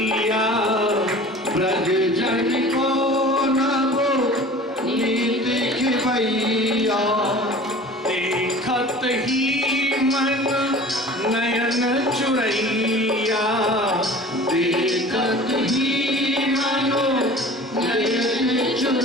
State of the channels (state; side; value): normal; both; correlation 0.42